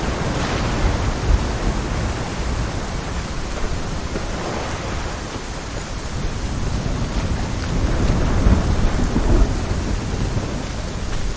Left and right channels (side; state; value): both; identical; correlation 1.00